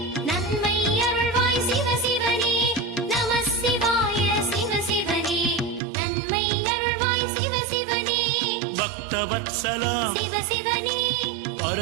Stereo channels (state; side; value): drops out; left; at 5.8 s